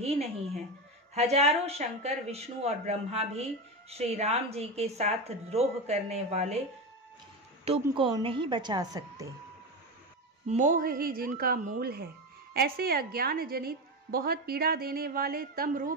नहीं है। हजारों शंकर, विष्णु और ब्रह्मा भी श्री राम जी के साथ द्रोह करने वाले तुमको नहीं बचा सकते। मोह ही जिनका मूल है, ऐसे अज्ञान जनित बहुत पीड़ा देने वाले तम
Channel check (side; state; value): both; normal; correlation 0.18